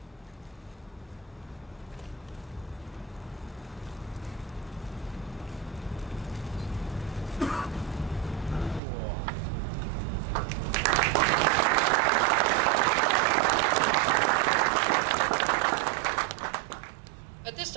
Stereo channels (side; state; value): left; drops out; at 8.8 s